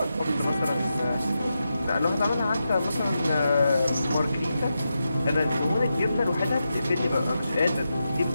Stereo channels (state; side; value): inverted; both; correlation -0.88